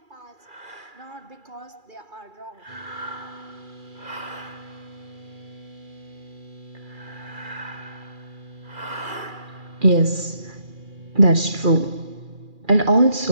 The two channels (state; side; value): late; left; 2.4 ms